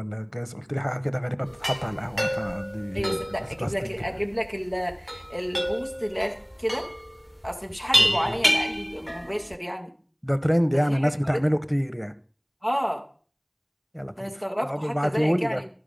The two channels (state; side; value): identical; both; correlation 1.00